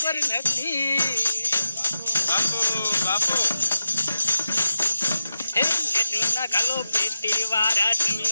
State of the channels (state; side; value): inverted; both; correlation -0.89